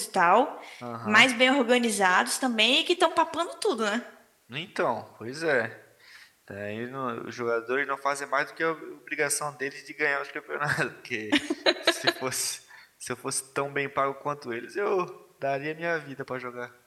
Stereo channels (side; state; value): both; identical; correlation 1.00